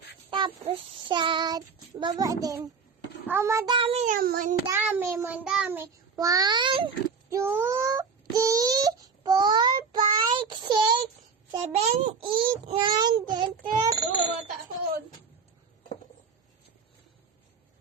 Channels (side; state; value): left; quieter; 5.4 dB